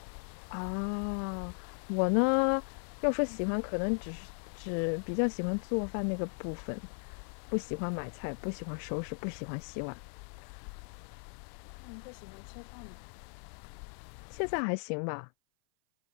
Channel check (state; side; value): silent; right; 54 dB below the other